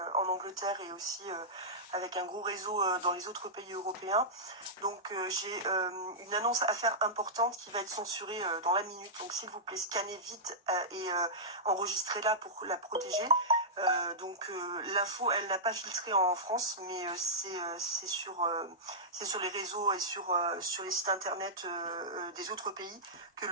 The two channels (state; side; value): normal; both; correlation -0.13